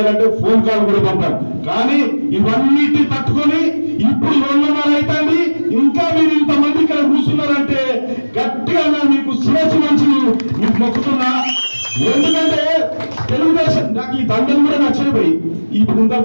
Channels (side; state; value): both; inverted; correlation -1.00